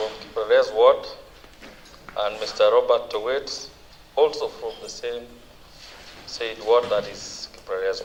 Kipreres Ward and Mr. Robert Towet, also from the same said ward, that is Kipreres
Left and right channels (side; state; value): both; identical; correlation 1.00